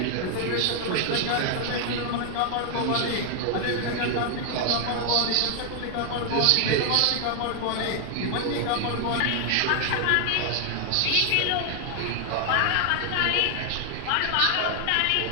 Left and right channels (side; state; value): both; different; correlation 0.00